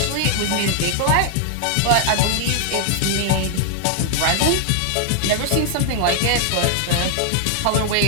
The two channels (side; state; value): both; different; correlation 0.00